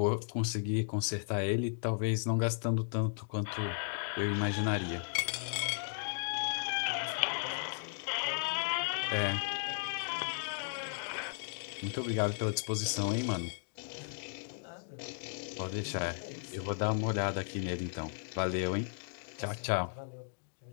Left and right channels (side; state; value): right; silent; digital silence